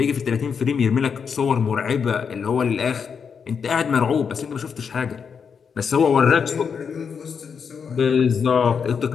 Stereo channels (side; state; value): right; quieter; 6.4 dB